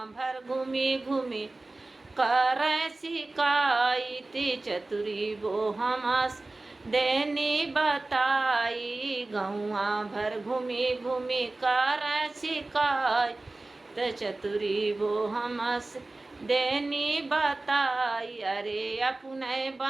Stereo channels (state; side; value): quieter; left; 3.0 dB